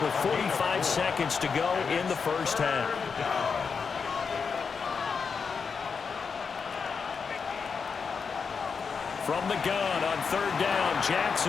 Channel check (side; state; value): right; quieter; 5.6 dB